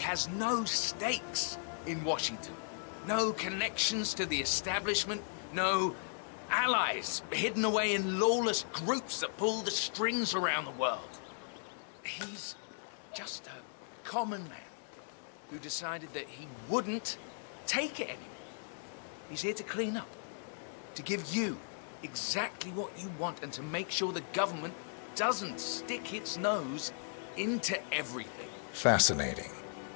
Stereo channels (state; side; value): silent; right; digital silence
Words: no stakes in Washington. No connections to the establishment. No allies hidden away in lawless groups that pull the strings around the world. He's just a common man who decided that he wouldn't take it anymore. He's here to clean up, to give you exactly what you want and to make sure the government doesn't stick its nose into everything. Fascinating.